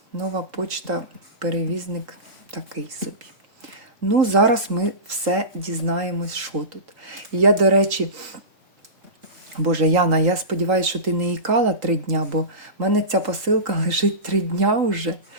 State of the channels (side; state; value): left; late; 3.8 ms